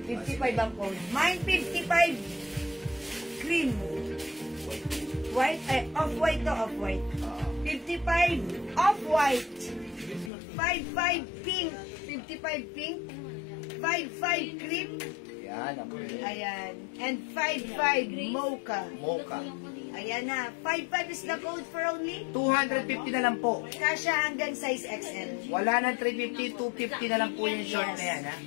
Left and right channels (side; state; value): right; drops out; at 10.3 s